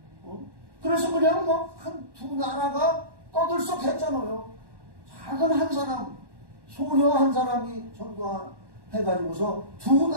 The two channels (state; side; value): late; left; 1.1 ms